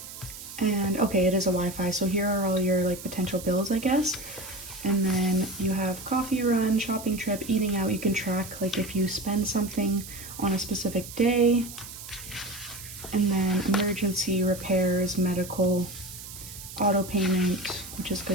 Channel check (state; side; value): noise; right; hiss, 13 dB below the sound